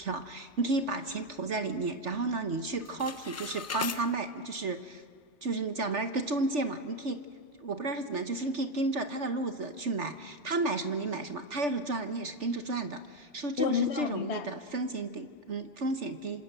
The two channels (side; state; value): both; normal; correlation 0.07